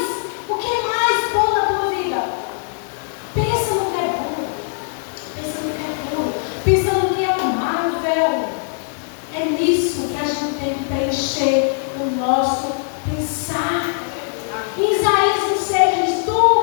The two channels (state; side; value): silent; right; 65 dB below the other